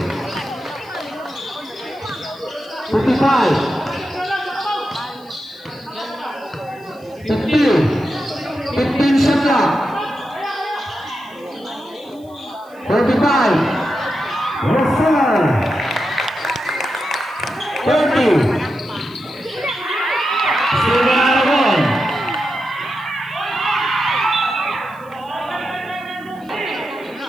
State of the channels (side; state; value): right; noise; hiss, 30 dB below the sound